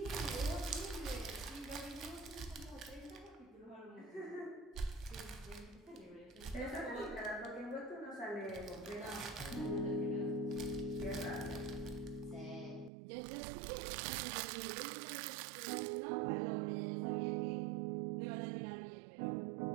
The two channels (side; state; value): left; drops out; at 12.9 s